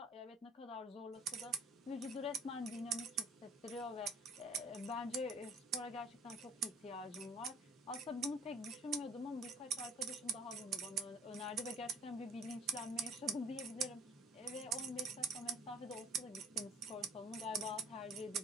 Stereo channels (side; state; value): both; normal; correlation 0.52